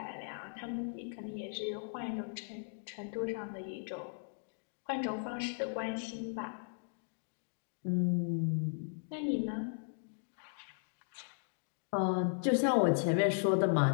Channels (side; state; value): right; silent; digital silence